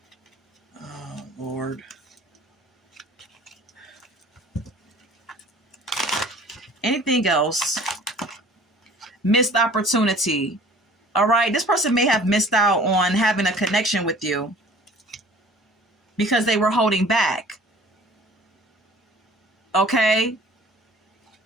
Oh, Lord. Anything else? Missed opportunity. All right. This person may have missed out on having a connection with you because they were holding back. Okay.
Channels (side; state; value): both; normal; correlation 0.49